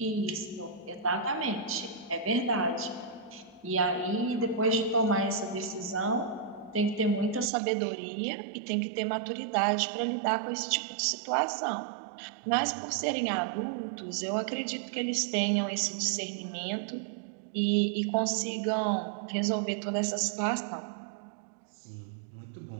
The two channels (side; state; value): left; drops out; at 7.5 s